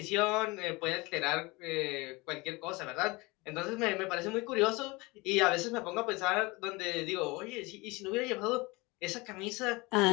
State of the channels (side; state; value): right; quieter; 24.2 dB